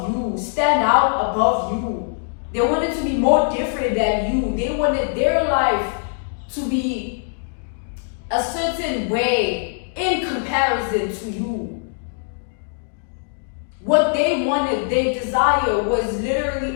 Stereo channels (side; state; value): right; silent; digital silence